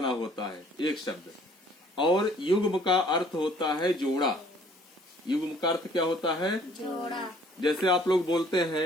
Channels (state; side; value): normal; both; correlation 0.58